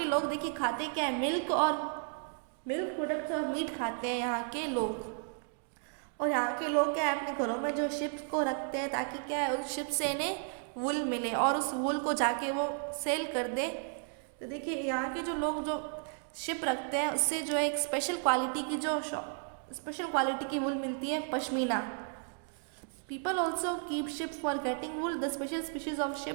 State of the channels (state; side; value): silent; left; 55 dB below the other